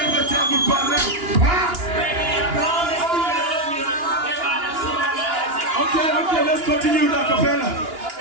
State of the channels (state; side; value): late; left; 2.9 ms